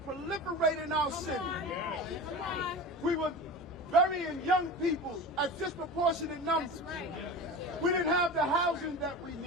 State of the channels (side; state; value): both; normal; correlation 0.30